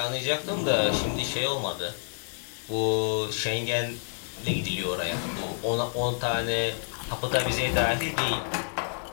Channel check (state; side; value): silent; right; digital silence